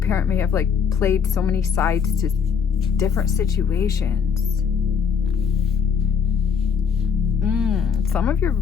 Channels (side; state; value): right; quieter; 6.6 dB